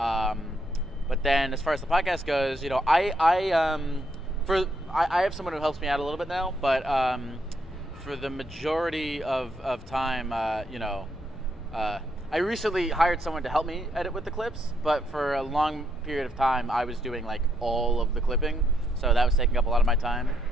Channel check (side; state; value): both; normal; correlation 0.75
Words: But then, as far as the podcast goes, I have someone who helps me out a little bit now, but for the majority of time, I recently hired someone to help me edit with the clips, but for a long period of time, I was doing all of the clipping, so that was taking up a lot of my time.